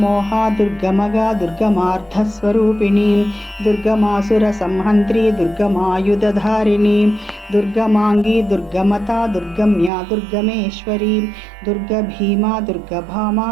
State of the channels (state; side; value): drops out; left; at 9.9 s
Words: దుర్గమగా దుర్గమార్థస్వరూపిణి దుర్గమాసుర సంహంత్రి దుర్గమాయుధధారిణి దుర్గమాంగి దుర్గమతా దుర్గమ్యా దుర్గమేశ్వరి దుర్గభీమా దుర్గభామా